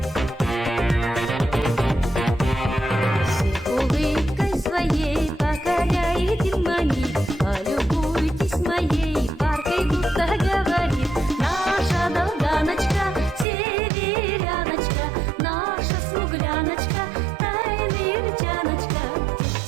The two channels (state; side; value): drops out; left; at 13.5 s